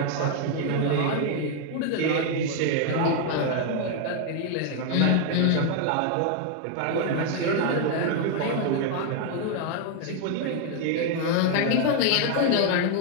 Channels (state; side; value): different; both; correlation 0.00